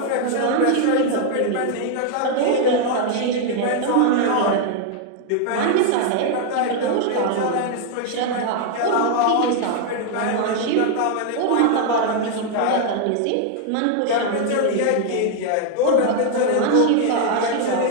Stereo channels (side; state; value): both; different; correlation 0.00